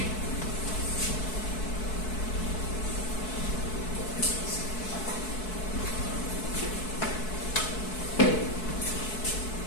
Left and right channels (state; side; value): late; right; 4.6 ms